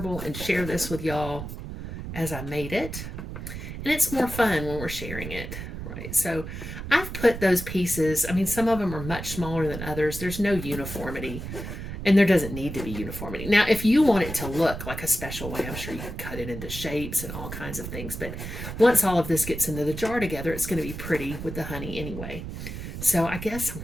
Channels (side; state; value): right; noise; rumble, 8 dB below the sound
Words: and share this with y'all as I made it. And it's more fun when we're sharing it, right? So I've put those pieces, I mean, some of them are much smaller than others. There's no uniformity, and there doesn't need to be uniformity. Now, if you want it to look like a special way, I'm sure you can cut it into shapes and all kinds of things. But once all of this gets into the jar together, it's going to be pretty with the honey anyway. So I guess I'm